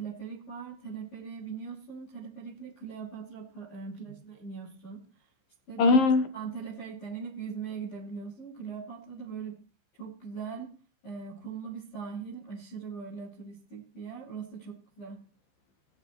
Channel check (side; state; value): right; late; 15 ms